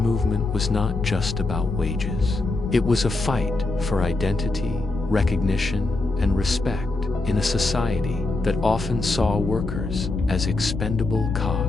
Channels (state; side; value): quieter; right; 3.1 dB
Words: was not just about wages. It was a fight for identity, recognition, and respect in a society that often saw workers as expendable